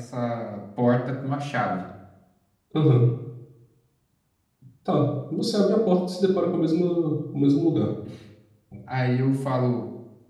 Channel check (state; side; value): identical; both; correlation 1.00